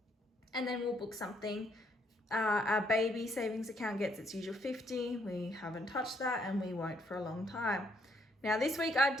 And then we'll book something. Our baby savings account gets its usual 50. We haven't touched that and we won't for a long time. Now this week I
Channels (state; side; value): normal; both; correlation 0.70